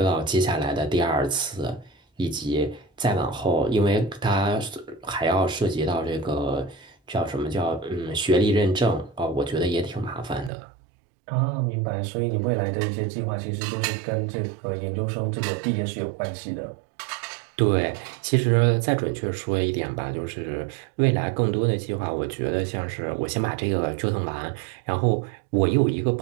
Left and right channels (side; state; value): left; drops out; at 10.5 s